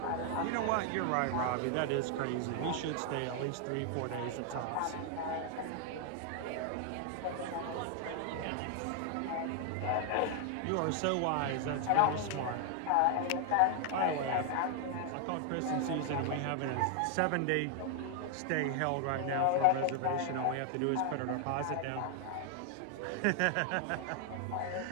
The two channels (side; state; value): both; different; correlation 0.00